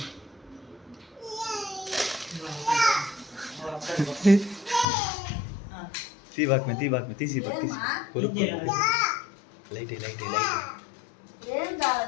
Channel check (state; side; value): drops out; right; at 4.9 s